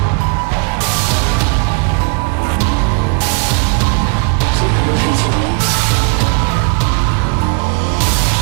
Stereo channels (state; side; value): quieter; left; 35.3 dB